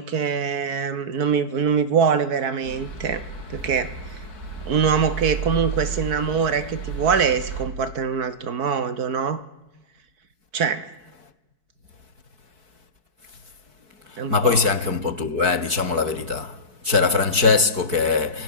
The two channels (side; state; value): left; late; 4.6 ms